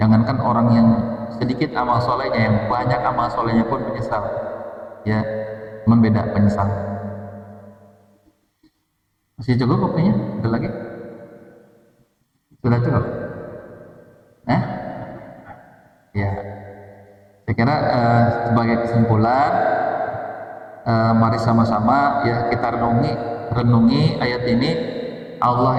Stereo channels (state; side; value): identical; both; correlation 1.00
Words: orang yang sedikit amal solehnya, yang banyak amal solehnya pun menyesal. Ya, membeda penyesal. Masih cukup waktunya? Ada lagi? Sudah cukup? Ya, saya kira sebagai kesimpulan, mari sama-sama ya kita renungi ayat ini.